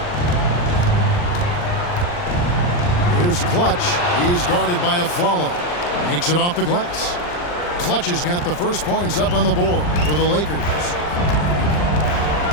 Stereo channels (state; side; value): late; right; 40 ms